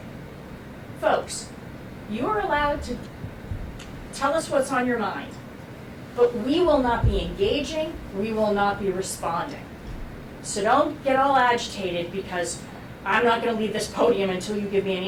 folks, you are allowed to tell us what's on your mind, but we will not be engaging, we will not be responding. So don't get all agitated because I'm not going to leave this podium until you give me an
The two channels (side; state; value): both; identical; correlation 1.00